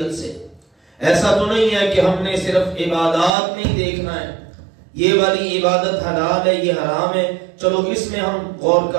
سے. ایسا تو نہیں ہے کہ ہم نے صرف عبادات نہیں دیکھنا ہے، یہ والی عبادت حلال ہے یہ حرام ہے چلو اس میں ہم غور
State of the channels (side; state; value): left; drops out; at 3.3 s